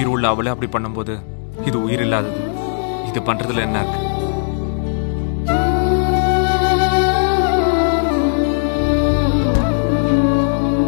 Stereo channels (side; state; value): right; silent; digital silence